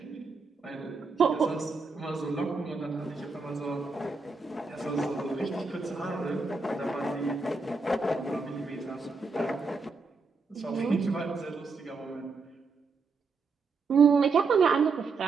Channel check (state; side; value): quieter; left; 4.3 dB